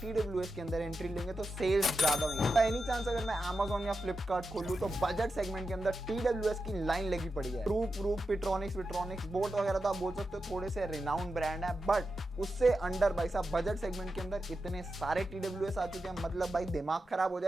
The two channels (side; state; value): both; normal; correlation 0.89